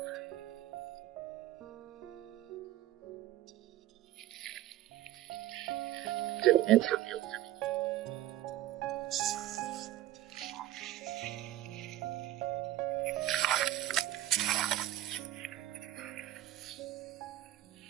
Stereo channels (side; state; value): left; quieter; 14.3 dB